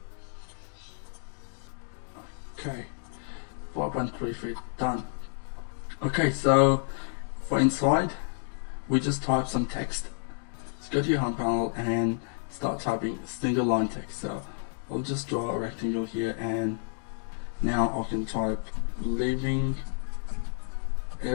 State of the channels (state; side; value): silent; right; digital silence